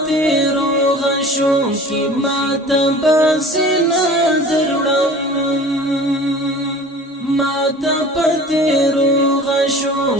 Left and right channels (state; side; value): normal; both; correlation 0.43